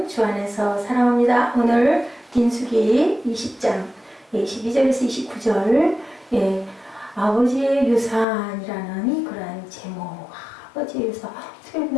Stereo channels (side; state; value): right; drops out; at 8.2 s